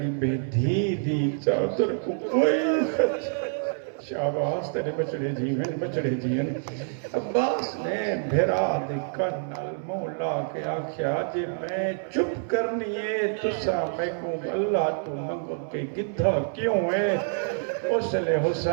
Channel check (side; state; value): left; silent; 60 dB below the other